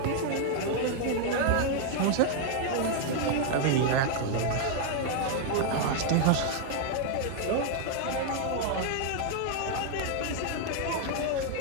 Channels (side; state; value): both; different; correlation 0.00